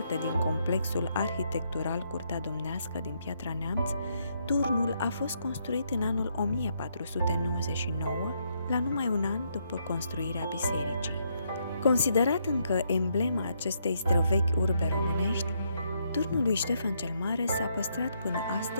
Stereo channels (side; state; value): both; inverted; correlation -0.75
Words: din complexul arhitectural Curtea Domnească din Piatra Neamț, turnul a fost construit în anul 1499, la numai un an după construirea bisericii. Considerat încă emblema acestei străvechi urbe românești, turnul lui Ștefan cel Mare s-a păstrat până